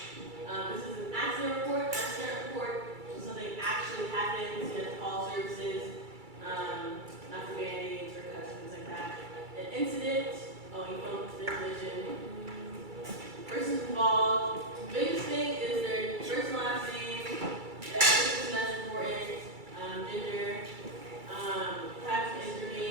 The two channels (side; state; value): left; late; 2.3 ms